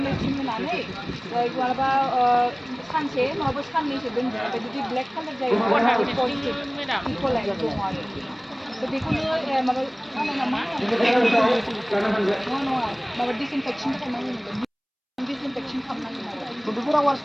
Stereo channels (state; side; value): identical; both; correlation 1.00